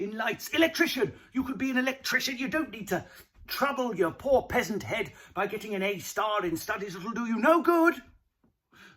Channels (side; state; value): both; identical; correlation 1.00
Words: lights. Electrician. You could be an electrician. You don't need to trouble your poor peasant head by getting an A star in studies that'll do you no good.